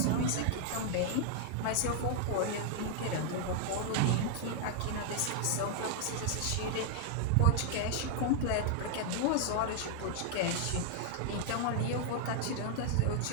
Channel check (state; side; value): different; both; correlation 0.00